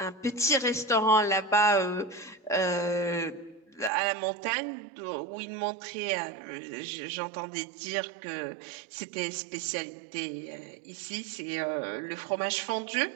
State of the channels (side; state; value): left; drops out; at 3.9 s